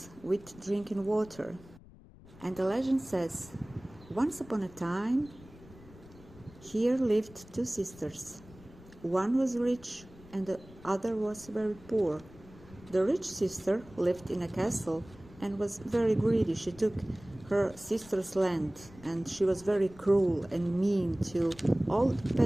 with drinking water. And the legend says, once upon a time, here lived 2 sisters. One was rich and the other was very poor. The rich sister lived in a castle and was very greedy. She took her sister's land, and she was very cruel and mean to all the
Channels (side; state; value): left; noise; rumble, 21 dB below the sound